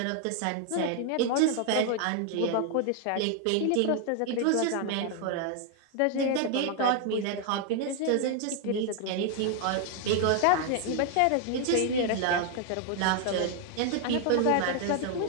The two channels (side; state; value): both; different; correlation 0.00